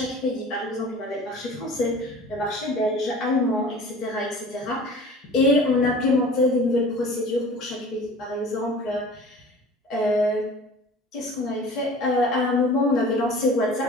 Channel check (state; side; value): normal; both; correlation 0.43